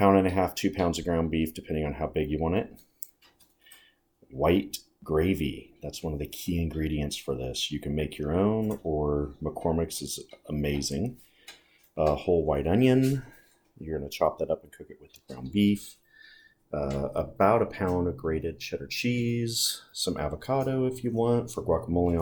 and a half, 2 pounds of ground beef, depending on how big you want it. White gravy. That's one of the key ingredients for this. You can make your own, or McCormick's is amazing. A whole white onion. You're going to chop that up and cook it with the ground beef. About a pound of grated cheddar cheese, some avocado if you want for guacamole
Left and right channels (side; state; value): both; identical; correlation 1.00